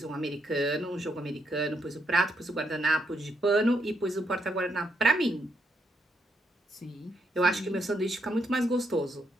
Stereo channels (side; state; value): both; normal; correlation 0.77